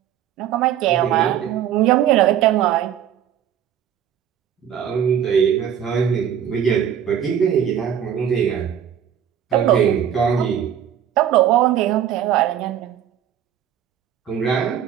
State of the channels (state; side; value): quieter; left; 9.6 dB